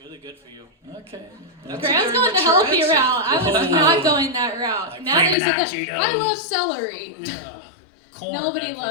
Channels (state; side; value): drops out; right; at 5.4 s